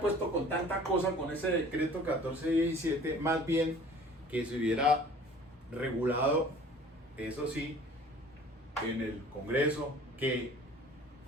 puesto con tanta cosa con ese decreto 1417, más bien que se hubiera regulado, eso sí, en el Congreso, que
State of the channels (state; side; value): normal; both; correlation 0.48